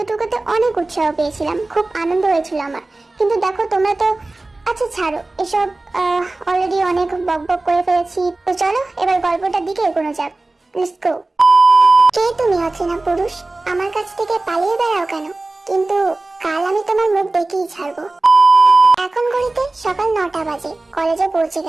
অনেক উৎসাহ পেয়েছিলাম, খুব আনন্দ হয়েছিল আমার। কিন্তু দেখো তোমরা তো, আচ্ছা ছাড়ো এসব, অলরেডি অনেক বকবক করে ফেলেছি। তো চলো এবার গল্পটার দিকে এগোনো যাক। Let's go. কে তুমি অচেনা পুরুষ? আমার কাছ থেকে পালিয়ে বেড়াও কেন? কিন্তু কাল আমি তোমার মুখ দেখেই ছাড়বো। এখন ঘড়িতে সকাল 9টা বাজে। কলেজে পৌঁছে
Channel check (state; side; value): quieter; left; 3.0 dB